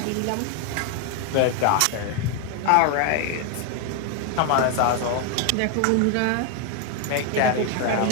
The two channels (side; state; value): both; different; correlation 0.01